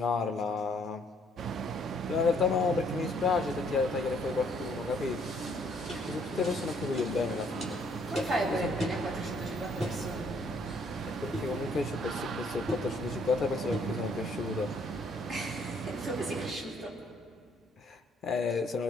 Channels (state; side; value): normal; both; correlation 0.65